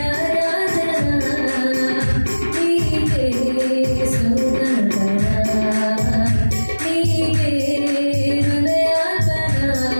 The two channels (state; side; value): inverted; both; correlation -1.00